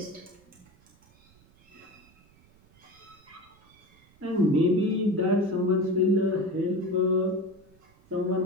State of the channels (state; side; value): noise; right; rumble, 30 dB below the sound